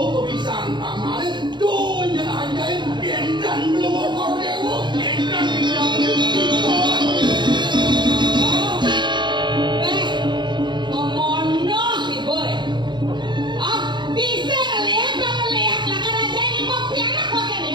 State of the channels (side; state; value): left; late; 0.22 ms